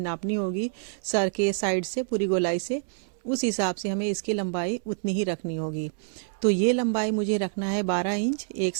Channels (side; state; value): left; silent; 60 dB below the other